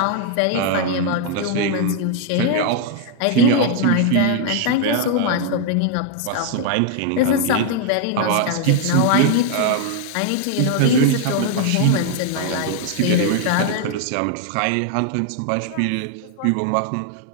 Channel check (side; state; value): both; different; correlation 0.00